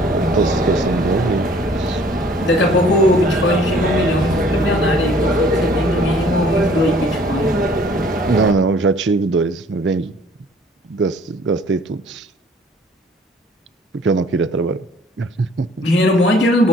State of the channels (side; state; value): both; normal; correlation 0.55